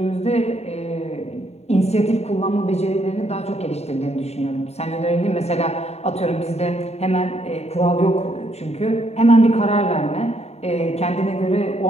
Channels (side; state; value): right; late; 0.31 ms